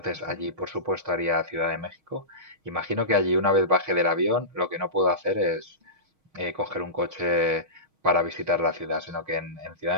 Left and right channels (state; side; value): late; left; 6.4 ms